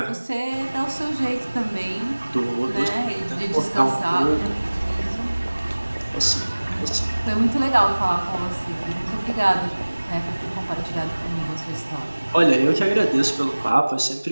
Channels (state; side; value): inverted; both; correlation -1.00